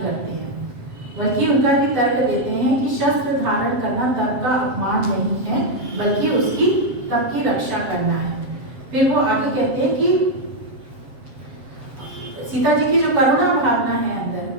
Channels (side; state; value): left; late; 7.6 ms